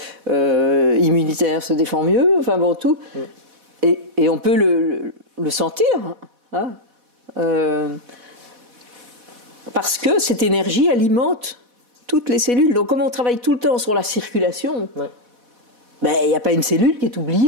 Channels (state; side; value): late; left; 4.1 ms